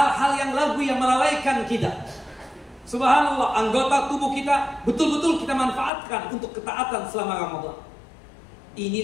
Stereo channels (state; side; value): drops out; right; at 5.9 s